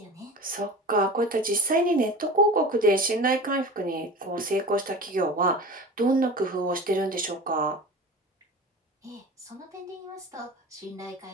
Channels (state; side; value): normal; both; correlation 0.35